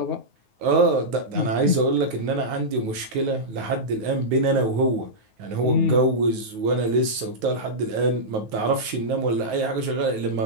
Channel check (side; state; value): left; late; 9.4 ms